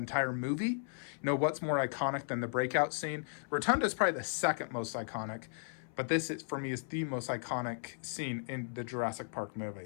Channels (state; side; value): silent; right; 54 dB below the other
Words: movie. You know, what's more iconic than the breakout scene? Rotunda is probably the second most iconic. But this, is, for me, is the most iconic scene in the Jurassic Park